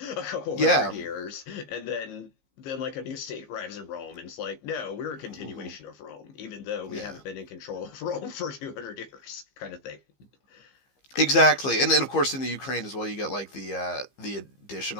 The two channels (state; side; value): late; right; 15 ms